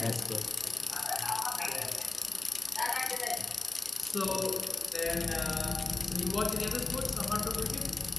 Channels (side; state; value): right; quieter; 3.3 dB